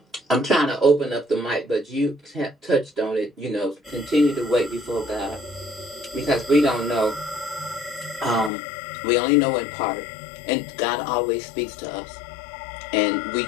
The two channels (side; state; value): right; drops out; at 8.5 s